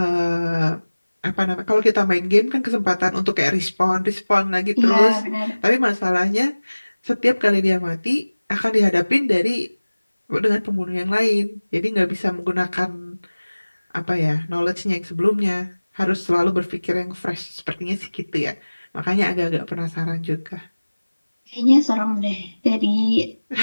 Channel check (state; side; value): inverted; both; correlation -1.00